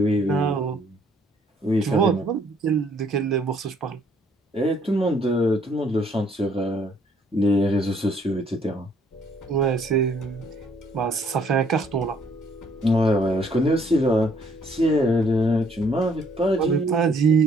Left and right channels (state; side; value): normal; both; correlation 0.64